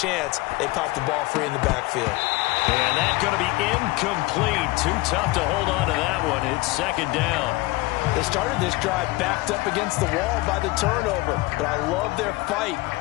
They popped the ball free in the backfield. And that's going to be incomplete. Too tough to hold on to that one. It's second down. They started this drive backed up against the wall by the turnover, but I love their fight.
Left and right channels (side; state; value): right; quieter; 21.1 dB